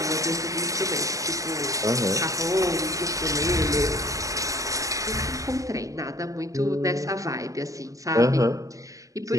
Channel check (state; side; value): late; left; 0.16 ms